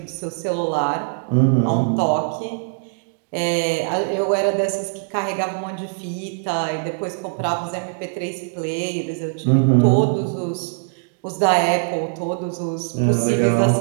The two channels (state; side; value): silent; left; digital silence